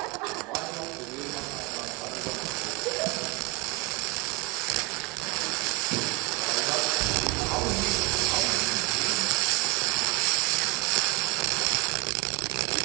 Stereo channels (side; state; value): left; quieter; 27.2 dB